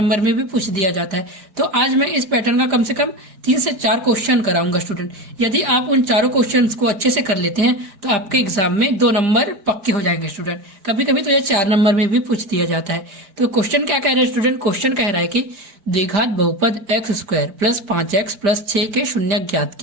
में भी पूछ दिया जाता है। तो आज मैं इस पैटर्न का कम से कम 3 से 4 क्वेश्चन कराऊंगा स्टूडेंट। यदि आप उन चारों क्वेश्चन को अच्छे से कर लेते हैं तो आपके एग्जाम में 2 नंबर पक्के हो जाएंगे स्टूडेंट। कभी कभी तो ये 4 नंबर में भी पूछ दिया जाता है। तो क्वेश्चन क्या कह रहे हैं स्टूडेंट? क्वेश्चन कह रहा है कि द्विघात बहुपद x square plus 5x plus 6 के शून्य ज्ञात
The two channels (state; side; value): late; left; 5.0 ms